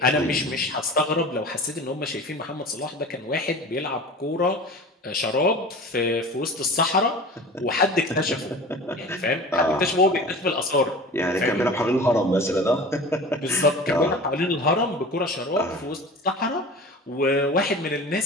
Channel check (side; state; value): both; normal; correlation 0.37